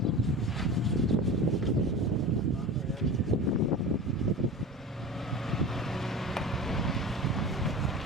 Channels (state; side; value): normal; both; correlation 0.32